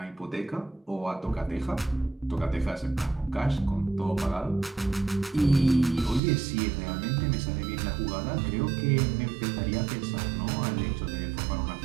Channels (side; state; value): left; drops out; at 6.2 s